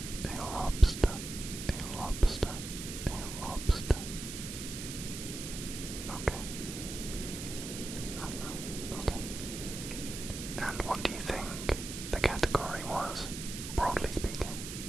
A lobster, a lobster, a lobster. Okay. Okay. And what do you think the category was, broadly speaking?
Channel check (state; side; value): noise; right; hiss, 8 dB below the sound